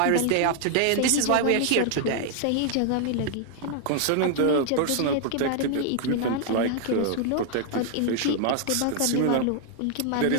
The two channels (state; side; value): different; both; correlation 0.00